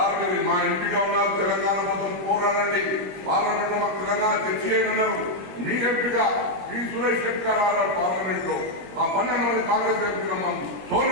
మా ఎంపీగా ఉన్నారు, తెలంగాణ కోసం పోరాడండి, పార్లమెంట్ లో తెలంగాణ తెచ్చివేయమన్నారు. మీ ఎంపీగా పి సురేష్ రెడ్డి గారు పార్లమెంట్ లో ఆ 12 మంది కాంగ్రెస్ ఎంపీలమ్మ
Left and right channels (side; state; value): left; late; 21 ms